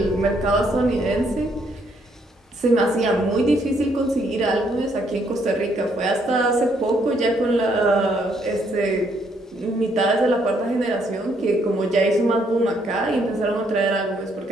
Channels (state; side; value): normal; both; correlation 0.70